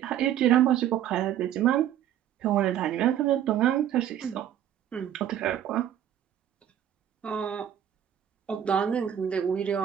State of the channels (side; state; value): left; quieter; 10.6 dB